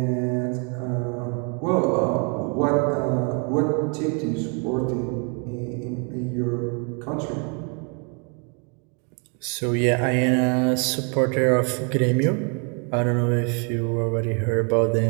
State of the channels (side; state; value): left; quieter; 36.8 dB